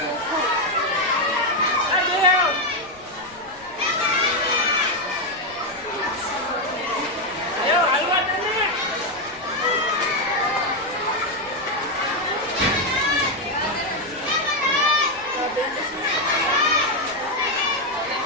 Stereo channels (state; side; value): noise; left; rumble, 26 dB below the sound